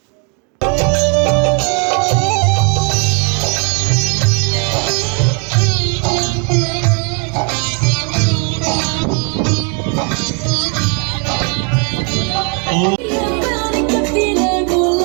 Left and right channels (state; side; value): quieter; left; 37.3 dB